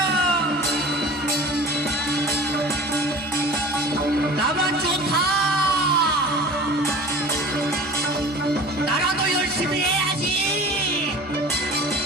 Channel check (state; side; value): normal; both; correlation 0.40